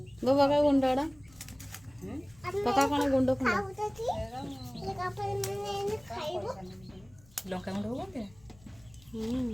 गो पका गुंडा पका कौन गुंड लंका गुंड हो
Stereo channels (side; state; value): left; noise; rumble, 26 dB below the sound